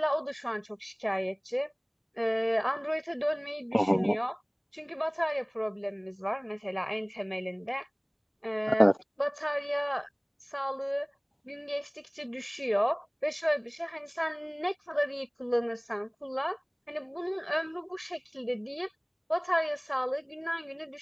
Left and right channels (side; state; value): both; identical; correlation 1.00